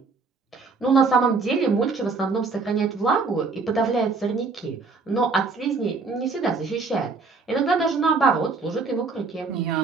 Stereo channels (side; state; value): left; quieter; 4.3 dB